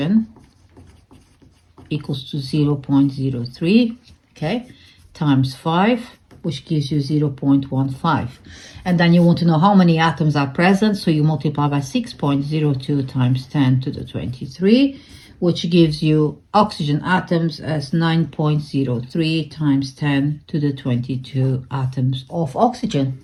equals to 0.03, okay, times 5, which gives you 0.15. And then you want to know how many atoms are present, so you multiply by 6.02 times 10 to the 23, which gives you oxygen atoms as 9.03 times 10 to the 22 atoms of oxygen.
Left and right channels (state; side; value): identical; both; correlation 1.00